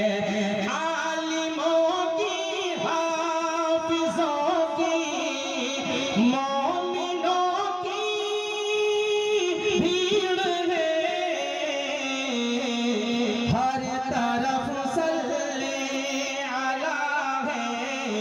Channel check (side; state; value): both; identical; correlation 1.00